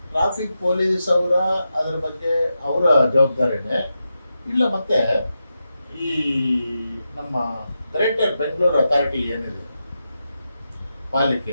ಟ್ರಾಫಿಕ್ ಪೊಲೀಸ್ ಅದರ ಬಗ್ಗೆ ಅವರ ಜವಾಬ್ದಾರಿನೇ, ಇಲ್ಲ ಮತ್ತೆ ಈ ನಮ್ಮ ಗ್ರೇಟರ್ ಬೆಂಗಳೂರು ಅಥಾರಿಟಿ ಏನಿದೆ ಪಾಲಿಕೆ,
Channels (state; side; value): inverted; both; correlation -0.88